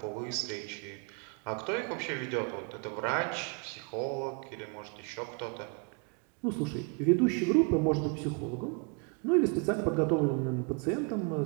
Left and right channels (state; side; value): quieter; left; 33.9 dB